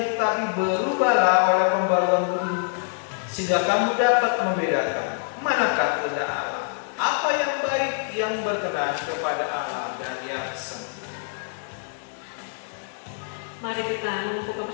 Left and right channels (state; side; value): silent; right; 62 dB below the other